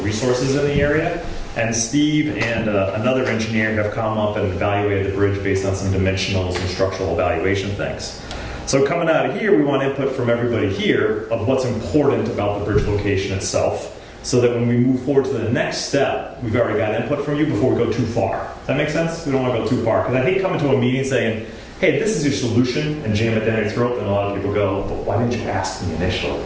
resources in the area. And Steve and another engineer have come up and evaluated the bridge based on some dimensionals and structural evaluation things. So coming out of here, we want input from everybody here of what's important about the bridge location itself, so that when we move forward to the next step, we've already got input from you before we go too far. Does that make sense? We don't want to go too far, because I hate coming to a meeting saying, hey, this is your solution, and jam it down your throat, and a lot of people go, but why didn't you ask me initially?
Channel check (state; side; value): identical; both; correlation 1.00